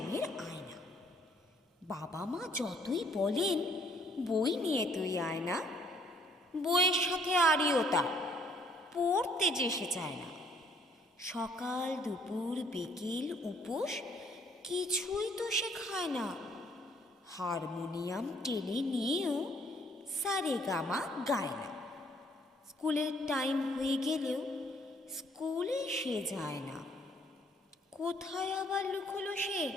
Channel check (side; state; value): both; normal; correlation 0.63